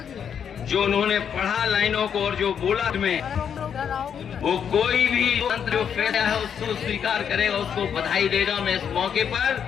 जो उन्होंने पढ़ा लाइनों को और जो बोला में वो कोई भी मंत्र जो फैसला है उसको स्वीकार करेगा, उसको बधाई देगा। मैं इस मौके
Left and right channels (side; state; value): right; quieter; 7.9 dB